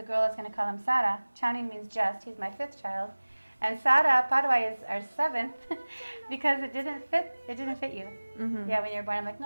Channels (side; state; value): both; inverted; correlation -1.00